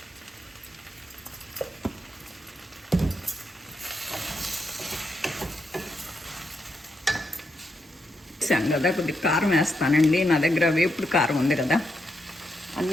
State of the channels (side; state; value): both; normal; correlation 0.82